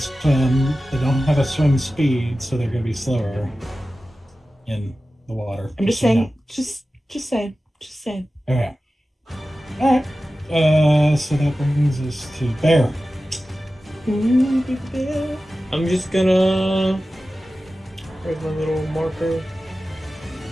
They don't have a swim speed, so they're going to be slower in the water. I'm just saying. Just saying. Just saying. Okay. All right. So that brings us to Bear. Ooh, big bear. I'm just gonna. Where's my little marker?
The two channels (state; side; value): normal; both; correlation 0.95